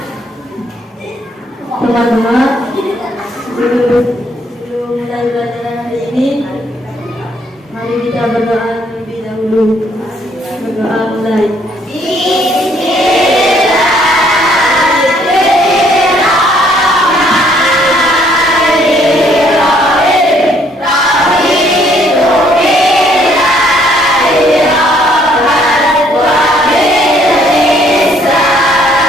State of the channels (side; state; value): both; normal; correlation 0.65